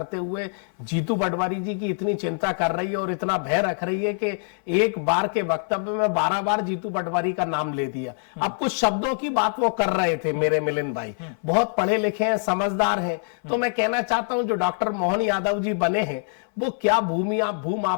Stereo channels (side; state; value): right; silent; 61 dB below the other